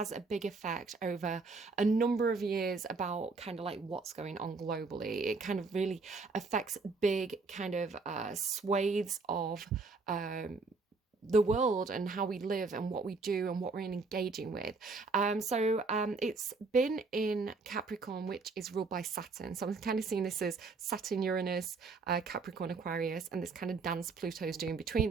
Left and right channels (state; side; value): quieter; left; 4.1 dB